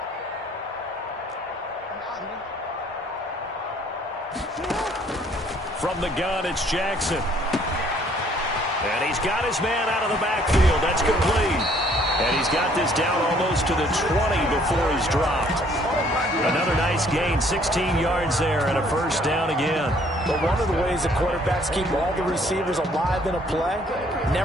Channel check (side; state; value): both; normal; correlation 0.61